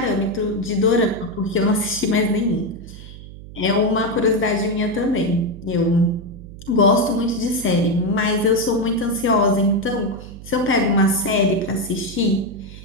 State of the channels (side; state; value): right; noise; hum, 15 dB below the sound